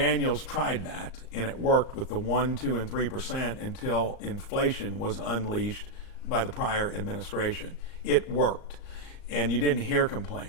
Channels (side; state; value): right; late; 38 ms